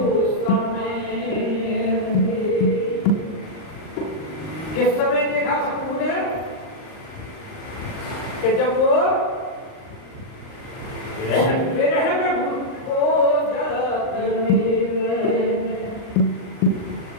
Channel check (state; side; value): late; right; 39 ms